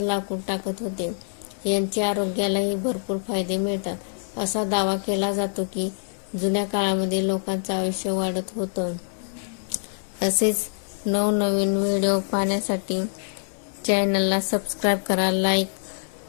लाकूड टाकत होते. यांचे आरोग्यालाही भरपूर फायदे मिळतात. असा दावा केला जातो की जुन्या काळामध्ये लोकांचं आयुष्य वाढत होतं. असेच नवनवीन व्हिडिओ पाहण्यासाठी चॅनलला सबस्क्राईब करा, लाईक,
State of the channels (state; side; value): silent; right; 62 dB below the other